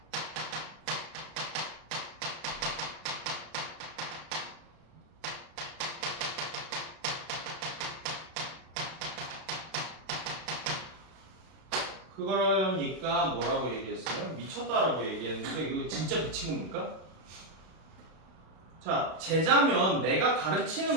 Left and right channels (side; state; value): left; late; 32 ms